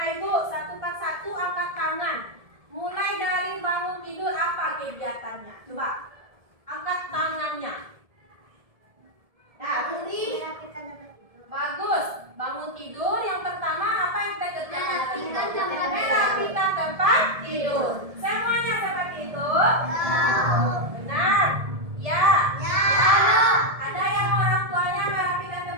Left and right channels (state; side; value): late; left; 1.7 ms